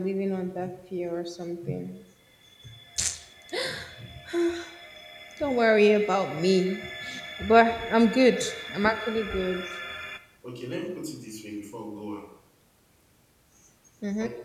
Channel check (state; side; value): identical; both; correlation 1.00